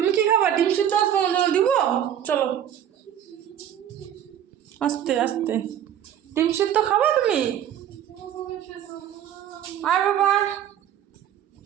কি খাবা? ডিম সিদ্ধ আসবো দিব, চলো আস্তে আস্তে। ডিম সিদ্ধ খাবা তুমি? আয় বাবা।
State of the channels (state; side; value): quieter; left; 10.1 dB